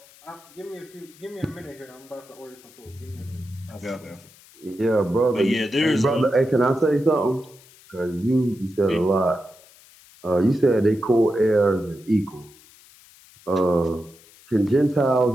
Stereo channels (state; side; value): noise; left; hiss, 25 dB below the sound